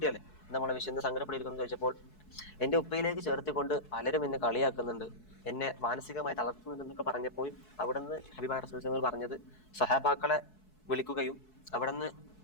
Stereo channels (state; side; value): late; right; 4.7 ms